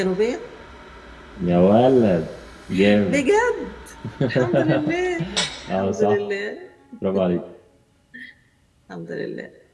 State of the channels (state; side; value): identical; both; correlation 1.00